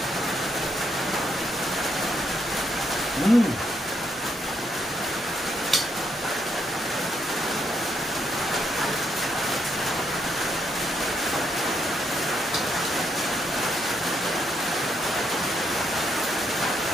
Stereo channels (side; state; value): both; normal; correlation 0.77